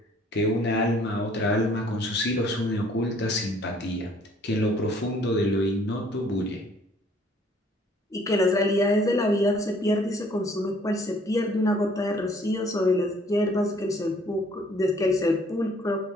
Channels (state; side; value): normal; both; correlation 0.60